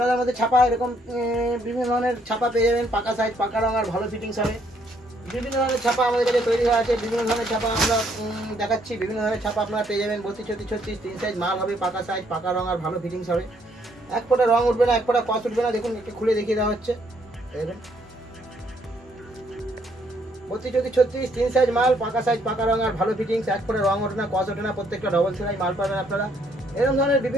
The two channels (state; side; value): normal; both; correlation 0.69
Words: হাতার মধ্যে ছাপা এরকম বিভিন্ন ধরনের ছাপা পেয়ে যাবেন, পাকা সাইজ পাকা রং আর ভালো ফিটিংস হবে। বিভিন্ন ধরনের ছাপা আমাদের কাছে তৈরি হয়ে আছে, বিভিন্ন ধরনের ছাপা আমরা দেখাচ্ছি। বিভিন্ন ধরনের ছাপা আপনারা পেয়ে যাবেন 32, 34, 36 3 সাইজ মাল হবে, পাকা সাইজ পাকা রং আর ভালো ফিটিংস হবে। এক ফোঁটা রং উঠবে না, এক ফোঁটা কস উঠবে না। দেখুন একটু খুলে দেখিয়ে দেওয়া হচ্ছে। দেখুন 32, 34, 36 3 সাইজ মাল, পাকা সাইজ পাকা রং আর ভালো ফিটিংস, এক ফোঁটা রং ওঠে না কস ওঠে না, প্রত্যেকটা ডবল সেলাই মাল পাবেন আপনারা। এরকম ধরনের